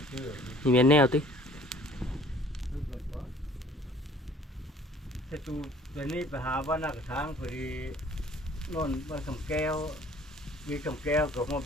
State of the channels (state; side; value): normal; both; correlation 0.53